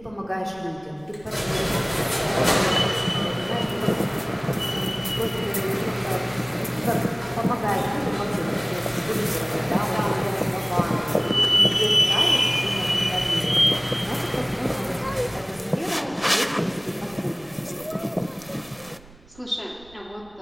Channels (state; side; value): noise; right; rumble, 24 dB below the sound